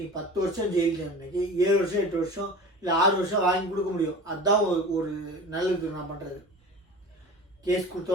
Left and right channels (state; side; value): normal; both; correlation 0.36